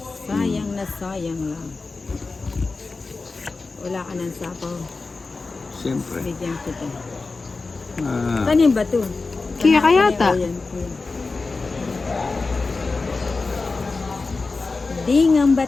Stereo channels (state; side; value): quieter; right; 3.9 dB